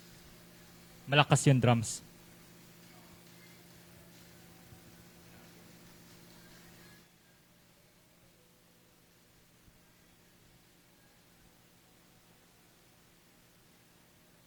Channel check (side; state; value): both; identical; correlation 1.00